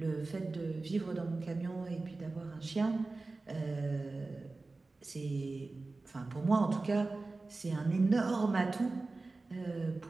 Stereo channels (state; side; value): quieter; left; 3.5 dB